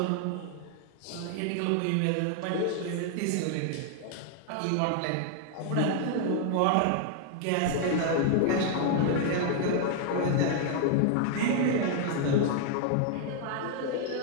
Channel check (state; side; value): different; both; correlation 0.00